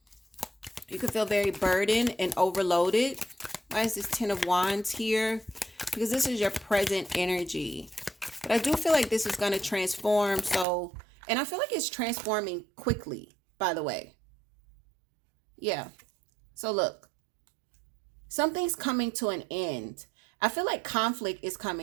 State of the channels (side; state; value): left; drops out; at 10.7 s